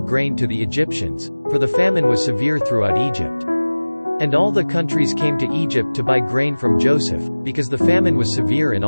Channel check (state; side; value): inverted; both; correlation -1.00